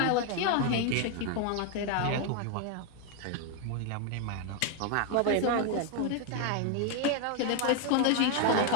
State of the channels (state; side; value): different; both; correlation 0.01